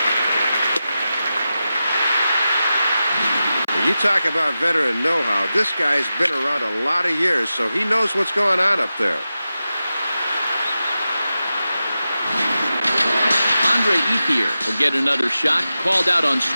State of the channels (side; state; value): both; inverted; correlation -0.92